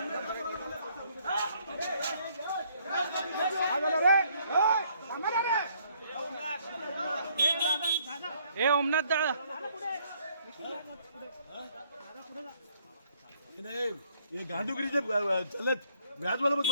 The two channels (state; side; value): inverted; both; correlation -0.65